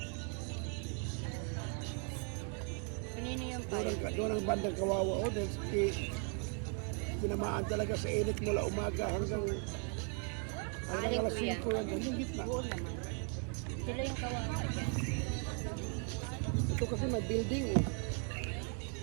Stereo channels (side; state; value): left; quieter; 39.6 dB